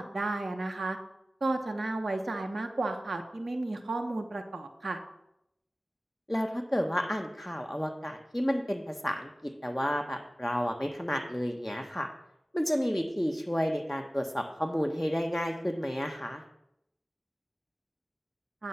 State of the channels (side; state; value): both; normal; correlation 0.97